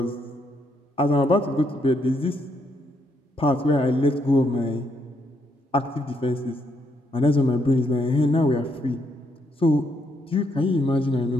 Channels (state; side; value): normal; both; correlation 0.75